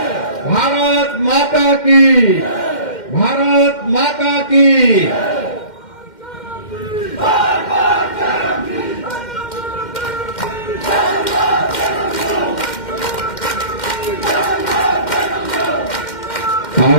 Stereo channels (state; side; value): late; right; 2.1 ms